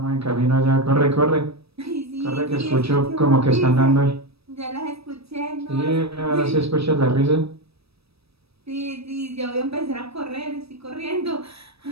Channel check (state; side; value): late; left; 0.78 ms